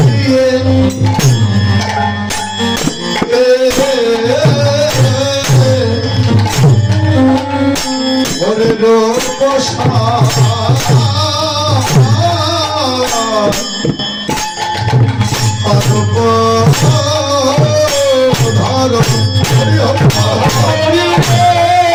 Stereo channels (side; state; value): both; identical; correlation 1.00